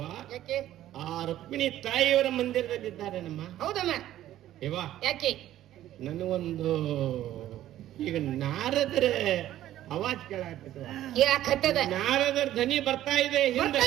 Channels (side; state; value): left; quieter; 13.1 dB